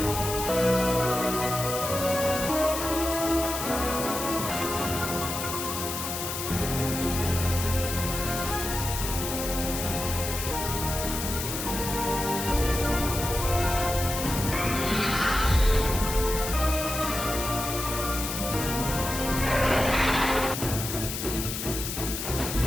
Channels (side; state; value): left; noise; hiss, 5 dB below the sound